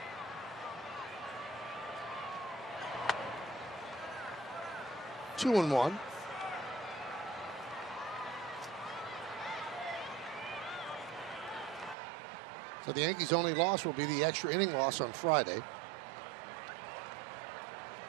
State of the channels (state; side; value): drops out; left; at 12.0 s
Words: Two and one. So the Yankees' only loss will be the extra inning loss on Friday.